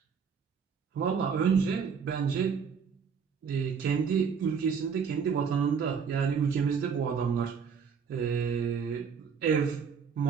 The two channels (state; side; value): quieter; left; 6.4 dB